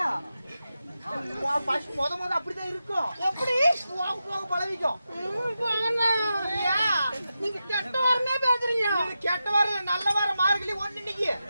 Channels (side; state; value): both; inverted; correlation -0.90